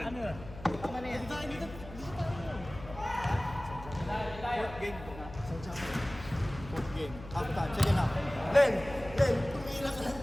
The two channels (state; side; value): noise; left; hum, 14 dB below the sound